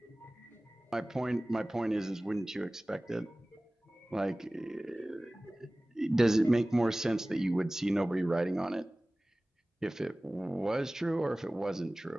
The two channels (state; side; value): normal; both; correlation 0.98